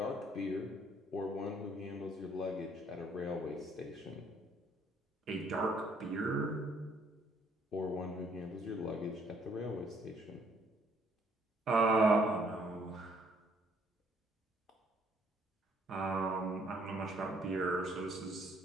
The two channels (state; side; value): normal; both; correlation 0.65